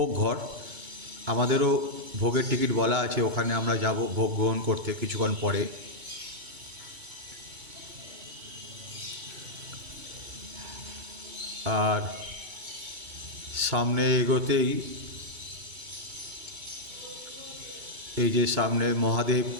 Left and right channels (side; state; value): left; late; 2.2 ms